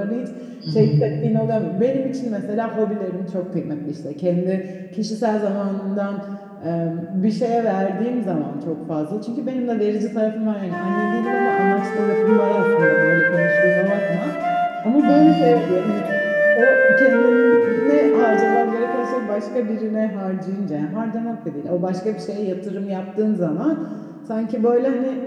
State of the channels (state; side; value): identical; both; correlation 1.00